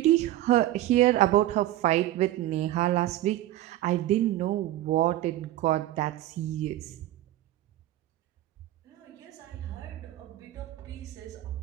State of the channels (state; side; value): quieter; left; 14.4 dB